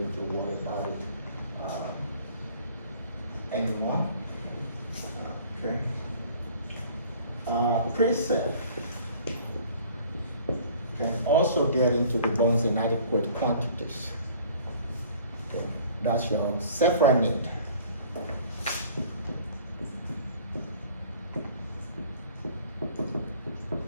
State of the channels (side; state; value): both; inverted; correlation -0.51